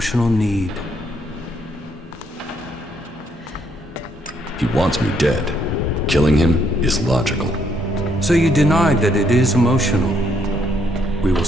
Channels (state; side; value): normal; both; correlation 0.71